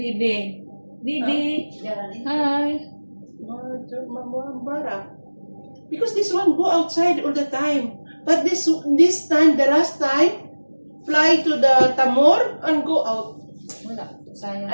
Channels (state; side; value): inverted; both; correlation -1.00